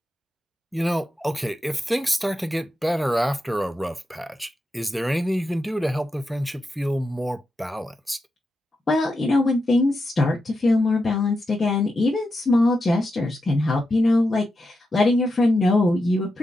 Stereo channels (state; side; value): normal; both; correlation 0.87